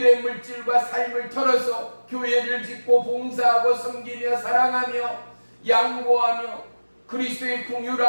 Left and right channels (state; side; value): inverted; both; correlation -1.00